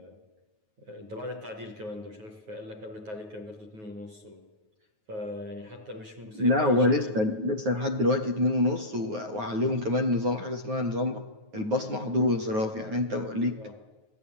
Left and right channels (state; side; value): late; left; 9.4 ms